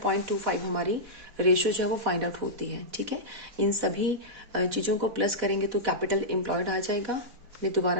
0.25 हमारी रेशियो जो है वो फाइंड आउट होती है। ठीक है, इन सभी चीजों को प्लस करेंगे तो कैपिटल एम्प्लॉयड आ जाएगा। मैं दोबारा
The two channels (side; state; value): left; late; 4.4 ms